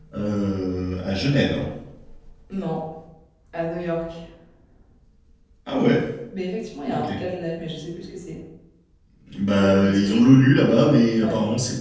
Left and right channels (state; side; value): identical; both; correlation 1.00